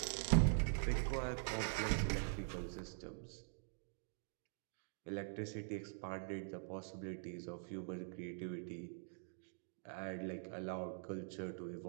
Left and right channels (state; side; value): silent; left; digital silence